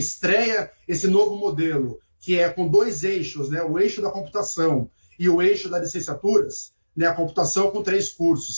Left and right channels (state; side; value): inverted; both; correlation -1.00